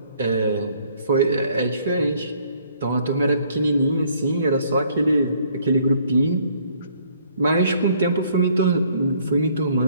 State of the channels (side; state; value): both; inverted; correlation -0.63